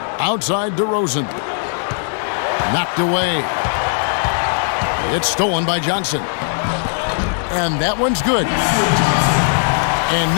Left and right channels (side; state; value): right; silent; 66 dB below the other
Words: Outside DeRozan. Knocked away. It's stolen by Johnson. And that one's good. And